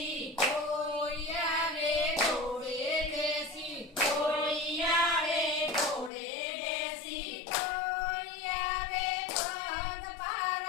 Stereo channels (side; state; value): right; drops out; at 6.1 s